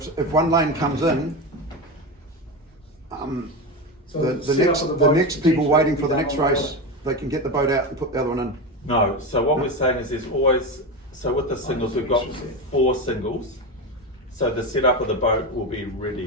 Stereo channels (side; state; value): both; normal; correlation 0.18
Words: if one lane comes in, So the setup of next boats people potentially waiting could for be the done next on the race, water. they can get the boat out and put the other one in. No, so what we're saying is there's always, so with the singles, we've got 4 singles. So the setup of the boat will be